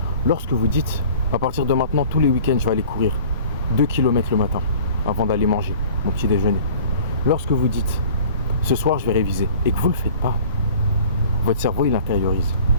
lorsque vous dites, à partir de maintenant, tous les week-ends, je vais aller courir 2 km le matin, avant d'aller manger mon petit déjeuner, lorsque vous dites, ce soir je vais réviser, et que vous ne le faites pas, votre cerveau il intériorise,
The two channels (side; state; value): both; inverted; correlation -0.47